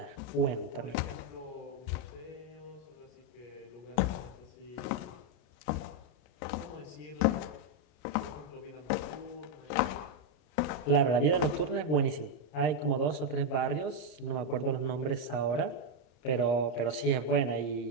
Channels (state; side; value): late; right; 33 ms